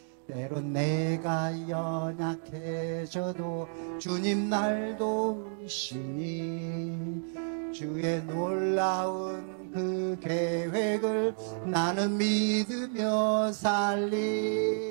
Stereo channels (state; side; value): silent; left; digital silence